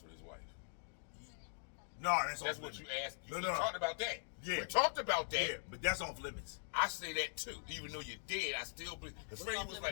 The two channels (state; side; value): silent; right; digital silence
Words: with his wife? No, that's That's off what limits. you asked. No, We no. talked about that. Yeah. We talked about that. Yeah, but that's off limits. I say that too. Even though you're dead, I still believe. Because Freddie was